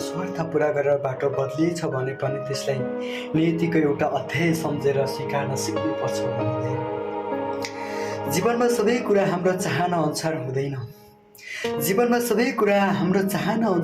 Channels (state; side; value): identical; both; correlation 1.00